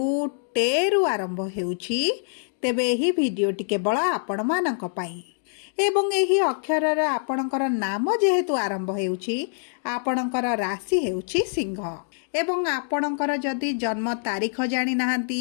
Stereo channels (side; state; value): right; silent; digital silence